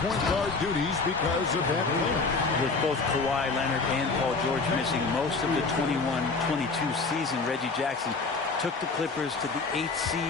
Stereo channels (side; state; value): right; quieter; 4.1 dB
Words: guard duties because of that playoff. With both Kawhi Leonard and Paul George missing most of the 21-22 season, Reggie Jackson took the Clippers to the 8th